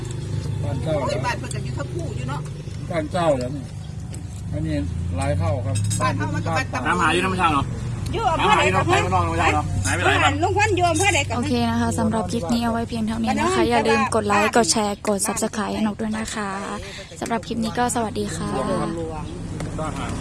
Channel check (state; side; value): identical; both; correlation 1.00